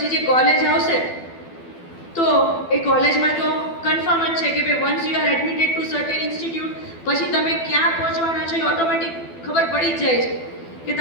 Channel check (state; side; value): late; right; 12 ms